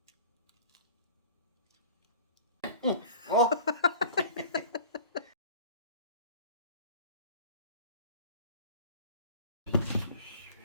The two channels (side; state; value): both; inverted; correlation -0.42